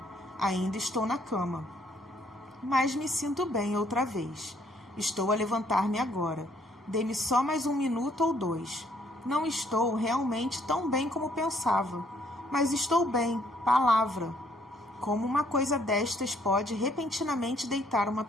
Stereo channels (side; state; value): both; normal; correlation 0.66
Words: Ainda estou na cama. Mas me sinto bem outra vez. Estou a levantar-me agora. Dê-me só mais 1 minuto ou 2. Não estou realmente tão bem como pensava. Mas estou bem, palavra. Como uma coisa destas pode repentinamente deitar uma